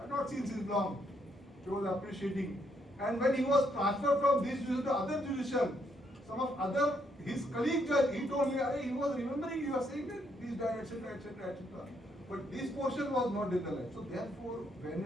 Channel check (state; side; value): normal; both; correlation 0.73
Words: have not seen since long. He was appreciating. And when he was transferred from this division to other division, some of other, his colleague judge, he told me, he was remembering you are saying that this died, etc., etc., etc. But this portion was not in the line. So therefore,